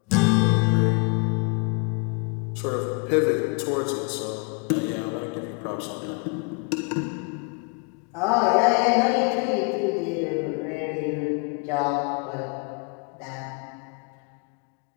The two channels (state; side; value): quieter; right; 33.2 dB